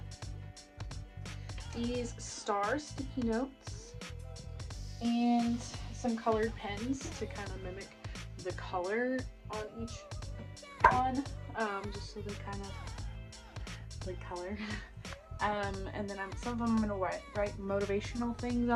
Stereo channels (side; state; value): both; identical; correlation 1.00